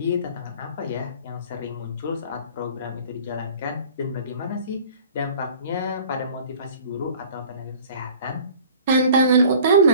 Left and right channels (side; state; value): both; inverted; correlation -0.47